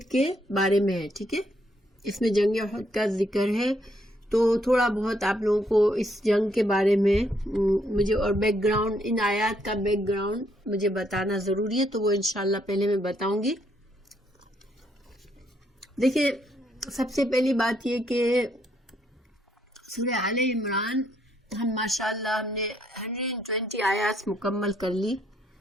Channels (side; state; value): both; normal; correlation 0.72